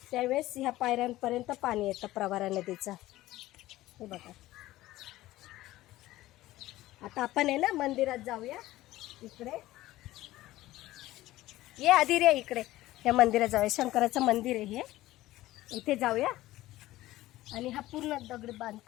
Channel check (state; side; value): quieter; right; 16.3 dB